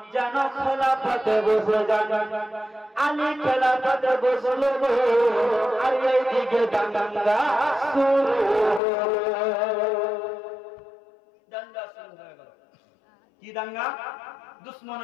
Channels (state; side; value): drops out; right; at 8.8 s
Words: যেন খেলাফতে বসে যান। আলী খেলাফতে বসলো আর এইদিকে দাঙ্গা শুরু হয়ে গেল। কি দাঙ্গা?